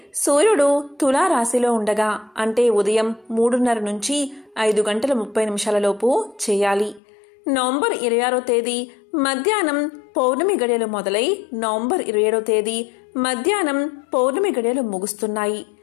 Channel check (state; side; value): drops out; right; at 7.0 s